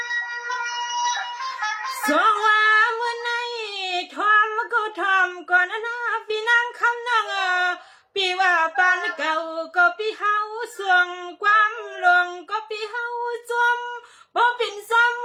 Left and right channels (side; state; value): both; identical; correlation 1.00